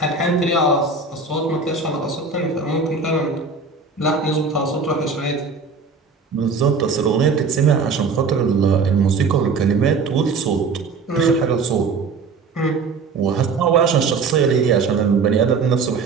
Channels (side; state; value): left; quieter; 4.6 dB